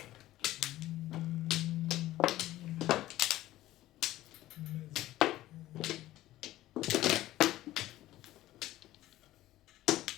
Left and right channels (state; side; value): quieter; right; 15.3 dB